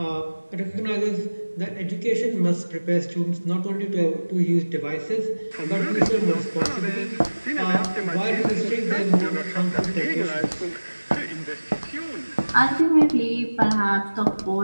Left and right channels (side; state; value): both; inverted; correlation -1.00